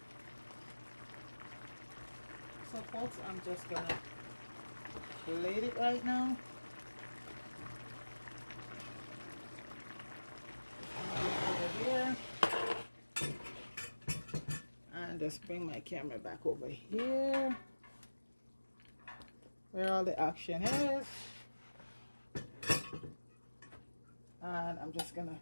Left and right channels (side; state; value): both; inverted; correlation -1.00